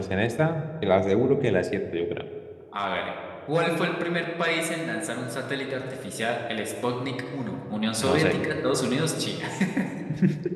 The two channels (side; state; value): both; identical; correlation 1.00